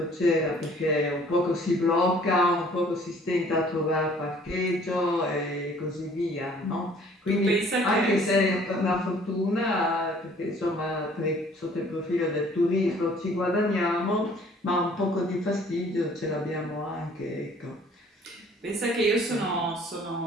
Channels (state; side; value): normal; both; correlation 0.55